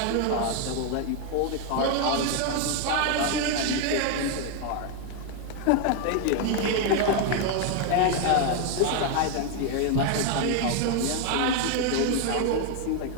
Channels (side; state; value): both; different; correlation 0.00